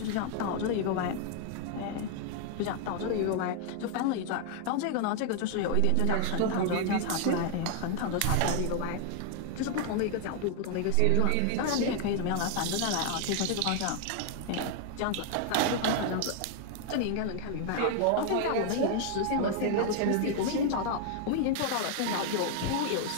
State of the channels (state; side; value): different; both; correlation 0.00